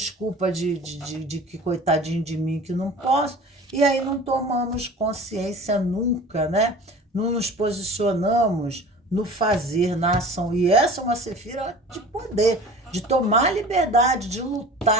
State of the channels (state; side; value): normal; both; correlation 0.41